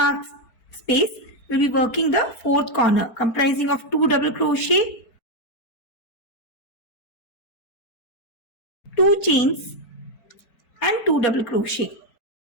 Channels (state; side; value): late; right; 4.5 ms